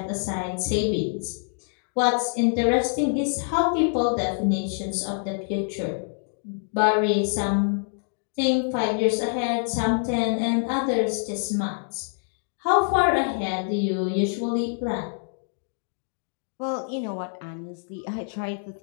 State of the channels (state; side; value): silent; right; digital silence